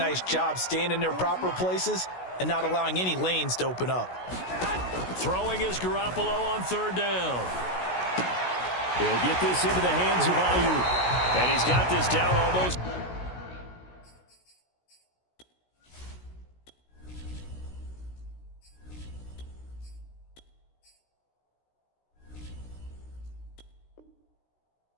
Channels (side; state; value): right; late; 16 ms